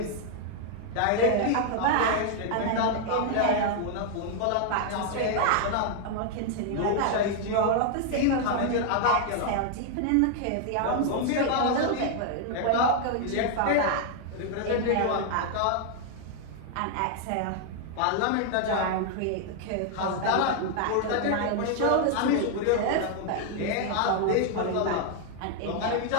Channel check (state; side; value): different; both; correlation 0.00